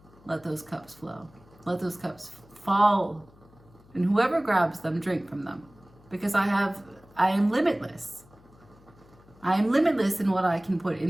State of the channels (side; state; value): left; noise; hum, 26 dB below the sound